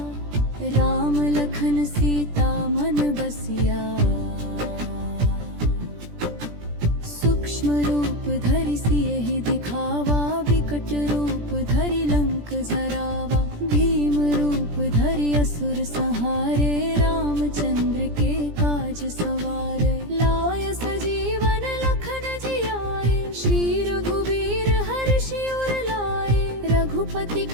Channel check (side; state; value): left; late; 17 ms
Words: राम लखन सीता मन बसिया, सूक्ष्म रूप धरि सियहि दिखावा, विकट रूप धरि लंक जरावा, भीम रूप धरि असुर संहारे, रामचंद्र के काज सवारे, लाय सजीवन लखन जियाए, श्री रघुबीर हर्षि उर लाए, रघुपति